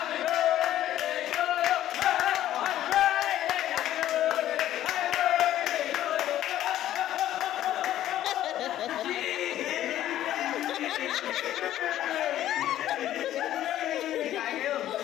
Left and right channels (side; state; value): right; quieter; 12.7 dB